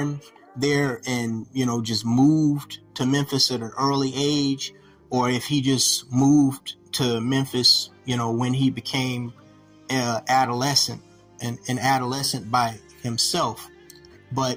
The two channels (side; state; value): both; identical; correlation 1.00